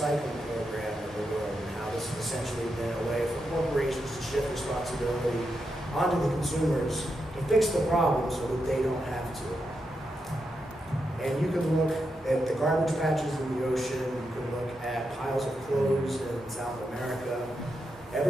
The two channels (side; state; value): both; normal; correlation 0.85